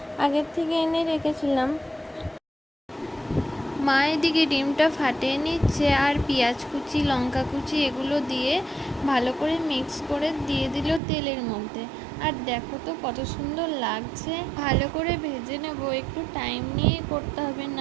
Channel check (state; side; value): drops out; left; at 11.0 s